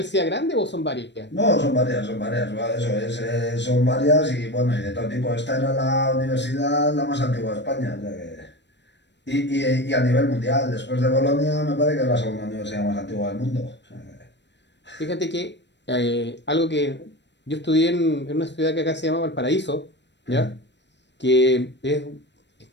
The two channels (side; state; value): right; late; 0.51 ms